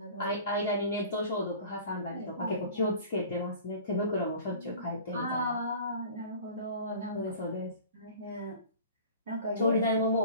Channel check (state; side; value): inverted; both; correlation -0.42